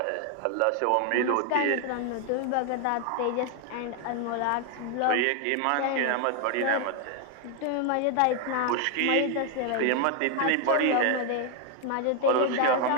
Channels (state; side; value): different; both; correlation 0.01